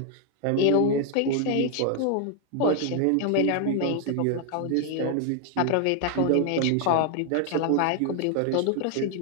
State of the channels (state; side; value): different; both; correlation 0.00